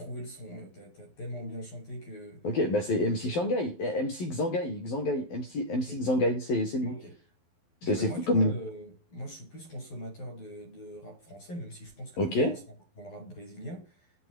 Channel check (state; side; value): late; right; 12 ms